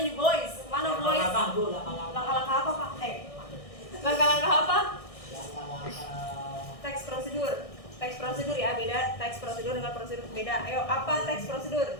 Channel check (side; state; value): right; late; 1.6 ms